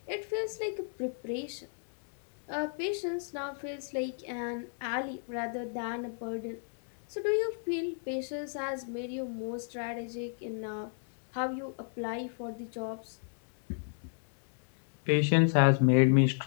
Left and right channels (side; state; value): right; silent; 56 dB below the other